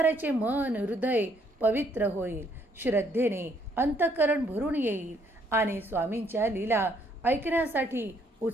मन हृदय पवित्र होईल. श्रद्धेने अंतःकरण भरून येईल आणि स्वामींच्या लीला ऐकण्यासाठी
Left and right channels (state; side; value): normal; both; correlation 0.68